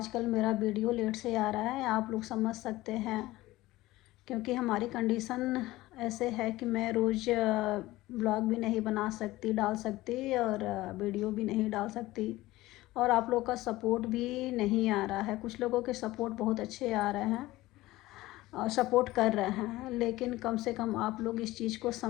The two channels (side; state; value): right; quieter; 17.9 dB